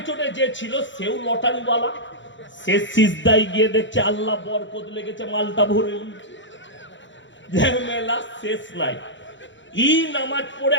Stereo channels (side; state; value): right; late; 0.54 ms